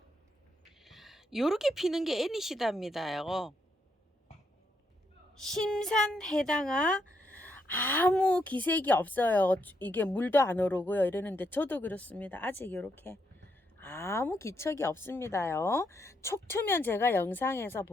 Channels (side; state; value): both; normal; correlation 0.78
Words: 요렇게 피는 게 애니시다입니다요. 심산해당아 아무 기색이 없어요. 이게 물도 안 오르고요. 이러는데 저도 그렇습니다. 아직 이렇게 아무 기척이 없습니다요. 촉 트면 제가 영상에서